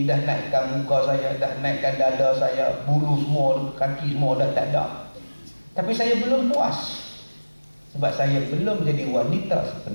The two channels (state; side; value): inverted; both; correlation -1.00